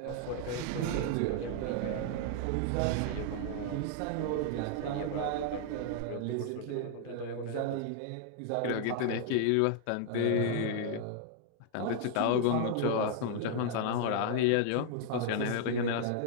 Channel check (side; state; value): both; different; correlation -0.01